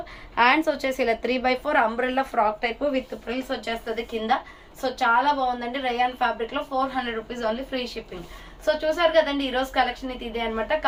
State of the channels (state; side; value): identical; both; correlation 1.00